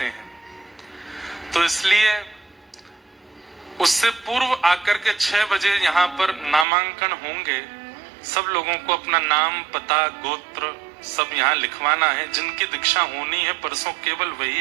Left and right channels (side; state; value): left; drops out; at 6.7 s